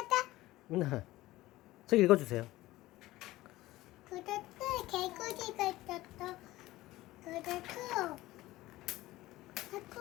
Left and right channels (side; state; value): right; quieter; 17.5 dB